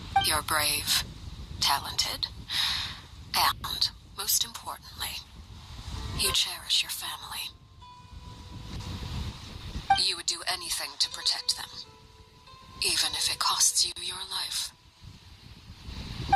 You're brave, talented, and, most importantly, you cherish your family. You would do anything to protect them, even if it costs you your life.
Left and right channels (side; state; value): both; identical; correlation 1.00